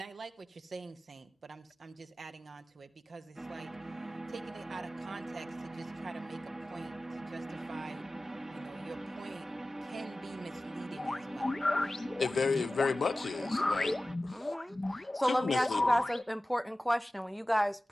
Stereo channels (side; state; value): both; normal; correlation 0.96